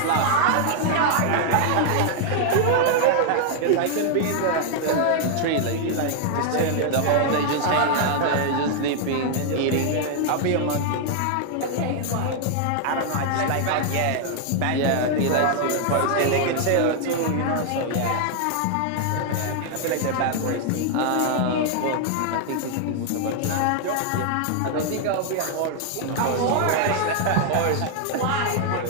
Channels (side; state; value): both; different; correlation 0.00